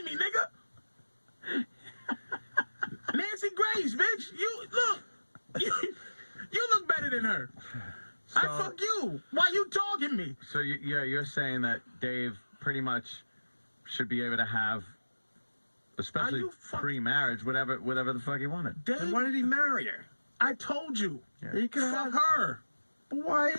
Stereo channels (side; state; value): both; inverted; correlation -1.00